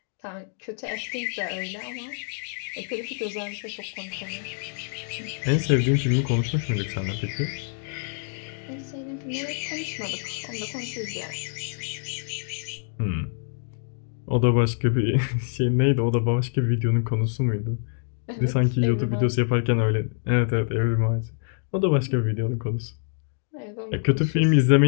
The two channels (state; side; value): silent; right; digital silence